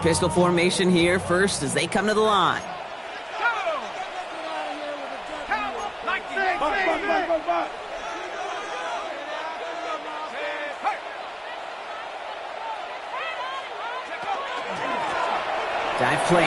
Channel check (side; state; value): both; identical; correlation 1.00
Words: pistol formation here first as they come to the line. Dive